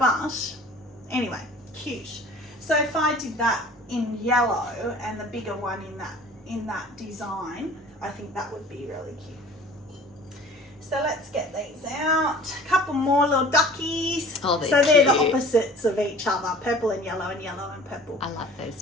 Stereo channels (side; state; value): both; normal; correlation 0.46